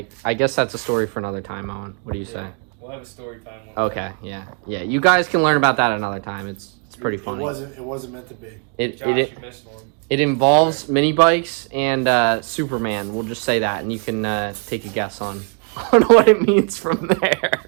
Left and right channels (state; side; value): quieter; left; 39.2 dB